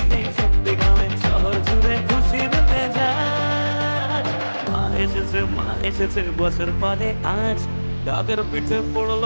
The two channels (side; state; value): both; inverted; correlation -1.00